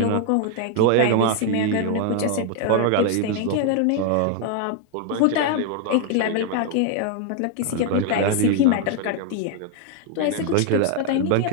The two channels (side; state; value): both; different; correlation 0.00